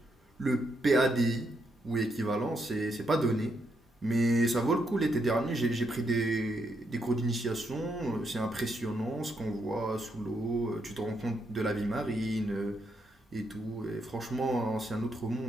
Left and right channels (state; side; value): normal; both; correlation 0.78